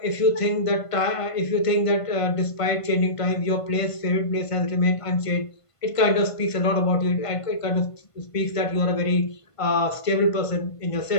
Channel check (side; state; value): right; late; 1.5 ms